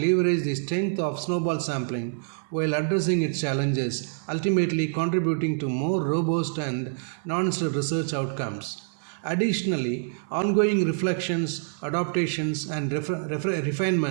the strength of snowball sampling while addressing its challenges, ultimately contributing to more robust and nuanced research outcomes. Additionally, ongoing reflections, adaptations, and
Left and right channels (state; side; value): silent; left; digital silence